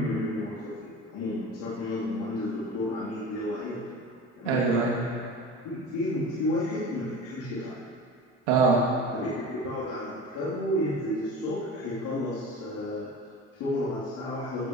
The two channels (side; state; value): both; normal; correlation 0.35